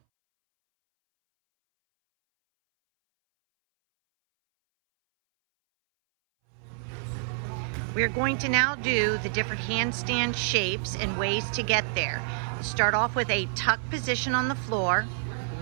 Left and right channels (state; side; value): silent; left; 60 dB below the other